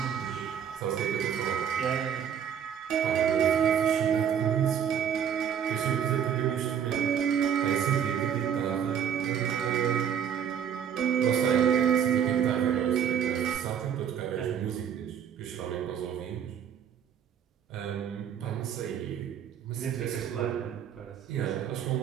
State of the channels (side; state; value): left; quieter; 8.4 dB